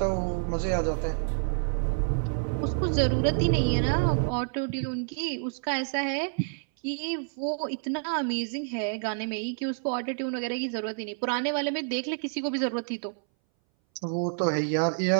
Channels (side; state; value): left; silent; 59 dB below the other